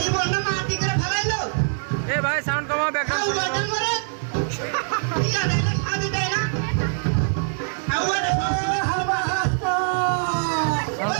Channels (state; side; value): silent; left; 63 dB below the other